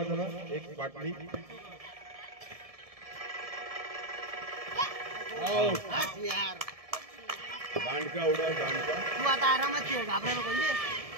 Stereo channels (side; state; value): left; late; 1.7 ms